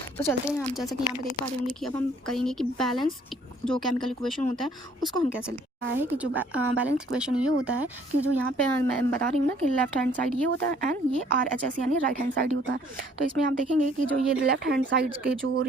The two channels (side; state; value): both; normal; correlation 0.60